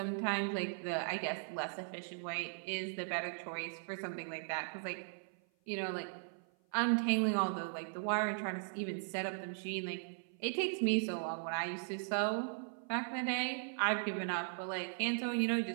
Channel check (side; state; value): left; silent; 52 dB below the other